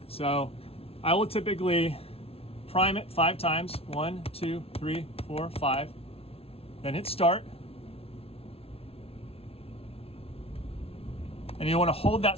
So I will typically prime it 5 times. 1, 2, 3, 4, 5. Then hit start. And you want to hold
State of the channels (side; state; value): right; late; 0.28 ms